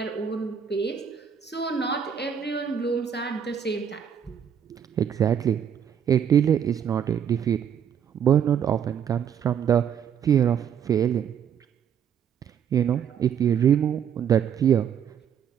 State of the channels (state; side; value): quieter; left; 8.3 dB